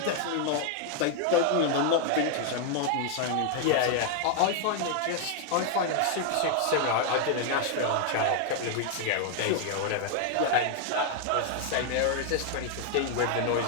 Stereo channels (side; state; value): both; different; correlation 0.00